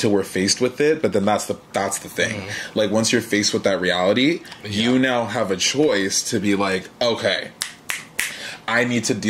we're faced with it. But then that's the thing. Like, once you're faced with that reality, you now have a choice to be like, okay, I need to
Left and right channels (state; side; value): identical; both; correlation 1.00